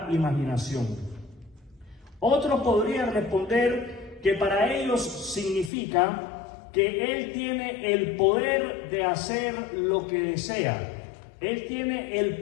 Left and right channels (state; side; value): drops out; right; at 5.7 s